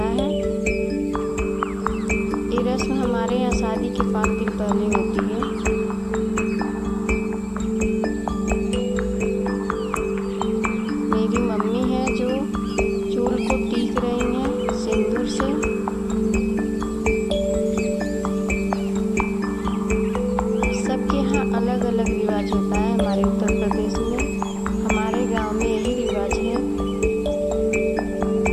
है। ये रस्म हमारे यहाँ शादी के 5 दिन पहले होती है। मेरी मम्मी है जो चूल को टीक रही हैं सिंदूर से। सबके यहाँ अलग अलग रिवाज होता है। हमारे उत्तर प्रदेश में, हमारे गांव में यही रिवाज है।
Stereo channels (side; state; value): both; identical; correlation 1.00